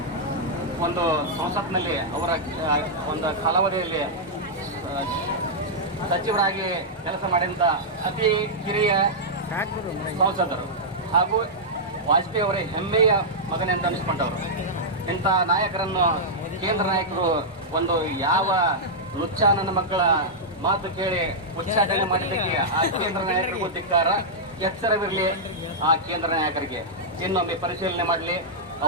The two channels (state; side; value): normal; both; correlation -0.08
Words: ಒಂದು ಸಂಸತ್ನಲ್ಲಿ ಅವರ ಒಂದು ಕಾಲಾವಧಿಯಲ್ಲಿ ಸಚಿವರಾಗಿ ಕೆಲಸ ಮಾಡಿದಂಥ ಅತಿ ಕಿರಿಯ ಸಂಸದರು ಹಾಗೂ ವಾಜಪೇಯಿ ಅವರೇ ಹೆಮ್ಮೆಯ ಮಗನೆಂದು ಅನಿಸ್ಕೊಂಡವರು. ಇಂಥ ನಾಯಕರನ್ನು ಕೇಂದ್ರ ನಾಯಕರು ಒಂದು ಯಾವ ಲುಚ್ಚ ನನ್ನ ಮಕ್ಕಳ ಮಾತು ಕೇಳಿ ಉಚ್ಚಾಟನೆ ಮಾಡಿದ್ದಕ್ಕೆ ಆ ಕೇಂದ್ರ ನಾಯಕರಿಗೂ ಧಿಕ್ಕಾರ, ಎಚ್ಚರವಿರಲಿ ಆ ಕೇಂದ್ರ ನಾಯಕರಿಗೆ. ಇನ್ನೊಮ್ಮೆ ಪರಿಶೀಲನೆ ಮಾಡಲಿ.